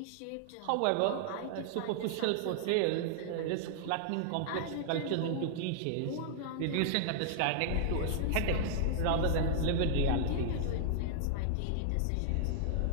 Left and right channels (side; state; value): both; different; correlation -0.01